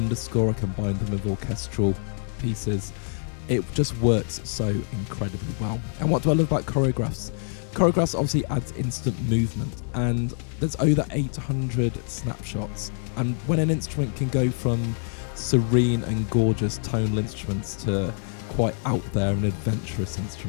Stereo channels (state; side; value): silent; right; 61 dB below the other